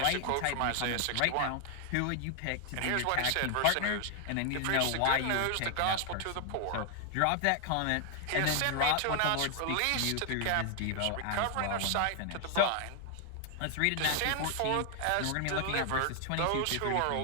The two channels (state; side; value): different; both; correlation 0.00